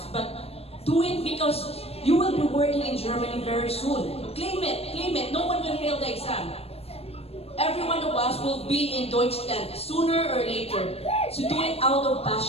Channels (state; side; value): late; right; 0.29 ms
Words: But do it because you will be working in Germany very soon. Claim it. No one will fail the exam. Every one of us will be in Deutschland sooner or later. So do it out of